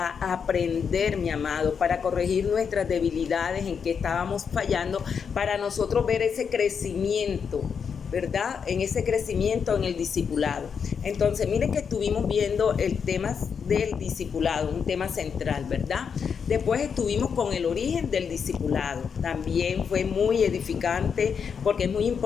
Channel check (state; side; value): quieter; right; 6.6 dB